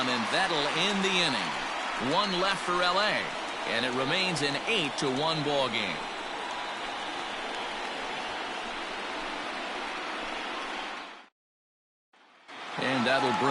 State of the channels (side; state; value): both; identical; correlation 1.00